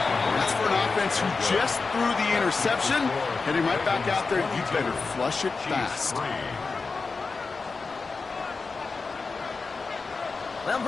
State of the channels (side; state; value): right; quieter; 4.3 dB